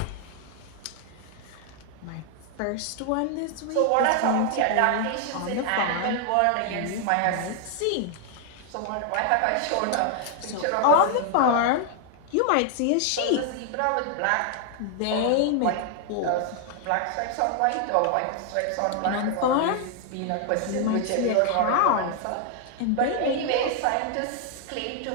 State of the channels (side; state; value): both; different; correlation 0.00